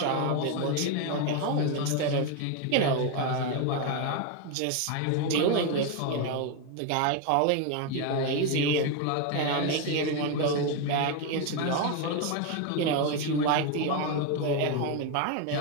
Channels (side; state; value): both; different; correlation 0.02